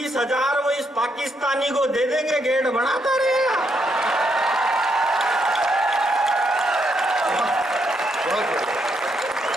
वो इस पाकिस्तानी को दे देंगे, गेट बनाता रहेगा।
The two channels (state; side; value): normal; both; correlation 0.77